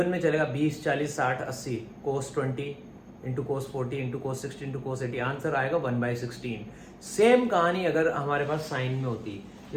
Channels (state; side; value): identical; both; correlation 1.00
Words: में चलेगा 20, 40, 60, 80। cos 20 into cos 40 into cos 60 into cos 80, answer आएगा 1/16। सेम कहानी अगर हमारे पास साइन में होती,